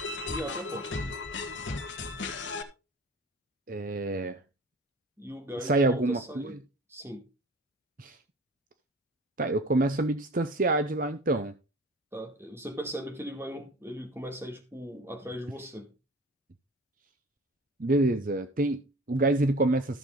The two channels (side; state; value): both; normal; correlation 0.41